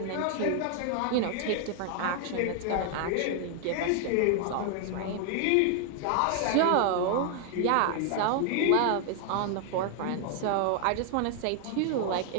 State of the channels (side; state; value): both; different; correlation 0.00